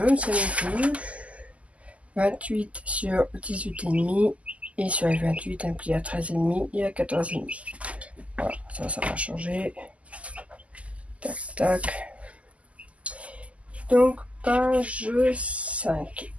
ne sais même plus, 28 sur 18,5 et sur les 28 un pli à 13,5 et à 14,5. Voilà, ça va changer. Tac, tac. Donc, page 5.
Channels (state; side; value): late; left; 0.066 ms